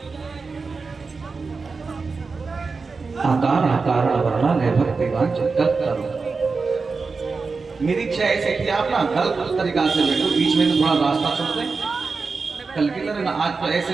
आकार आकार वर्णन है भक्तिवान चित्त करो। मेरी इच्छा ऐसे कि आप ना गलत तरीका से बैठो, बीच में तो थोड़ा रास्ता छोड़ दें। कल की तरह ना आज तो ऐसे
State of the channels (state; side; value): quieter; left; 4.5 dB